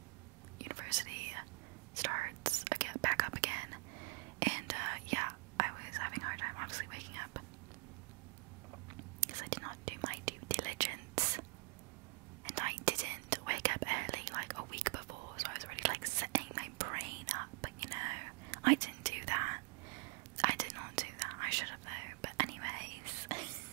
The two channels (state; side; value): quieter; left; 33.7 dB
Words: university starts again, back up again, and yeah, I was having a hard time obviously waking up because I did not do my due diligence, and I didn't wake up early like a week before, so I was already like setting my brain up, you know. I didn't do that. I did not do that. I should have though. But anyways,